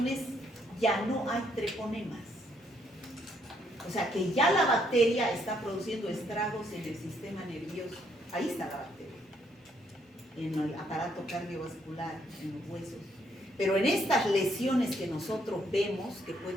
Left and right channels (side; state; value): both; normal; correlation 0.71